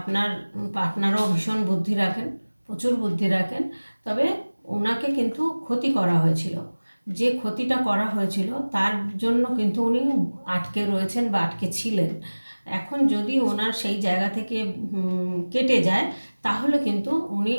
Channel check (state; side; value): inverted; both; correlation -1.00